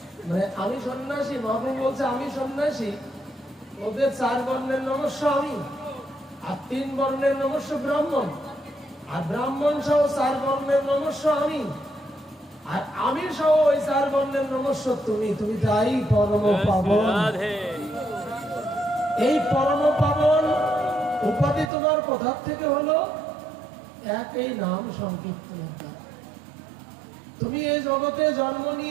মানে আমি সন্ন্যাসী, মহাপ্রভু বলছে আমি সন্ন্যাসী, ওদের 4 বর্ণের নমস্য আমি, আর 3 বর্ণের নমস্য ব্রাহ্মণ, আর ব্রাহ্মণ সহ 4 বর্ণের নমস্য আমি, আর আমি সহ ওই 4 বর্ণের নমস্য তুমি। তুমি তাই পরম পাবন। এই পরম পাবন উপাধি তোমার কোথা থেকে হলো? একই নাম সংকীর্তনের দ্বারা। তুমি এই জগতে জন্ম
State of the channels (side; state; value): left; drops out; at 21.7 s